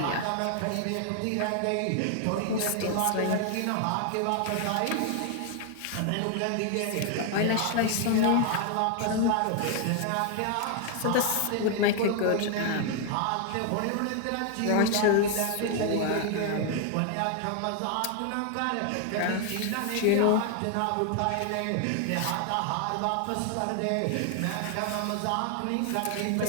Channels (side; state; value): both; different; correlation 0.00